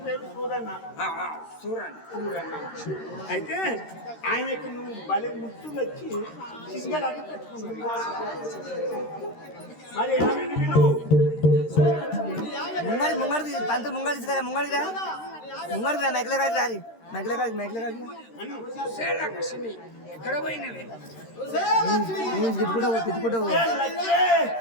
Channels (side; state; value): right; late; 13 ms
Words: పేరు సూరన్న. సూరన్న అయితే ఆయనకి నువ్వు భలే ముద్దు వచ్చి సింగడాన్ని పెట్టుకున్నావు. మరి ఆమెను విను. ముంగడి పంతులు ముంగడి తీసుకురా. ముంగడిగా మెక్కలే కాదు రారి. మెక్కలే కాదు లక్ష్మి ఎక్కడ పోయినవి తిట్టుకుంటా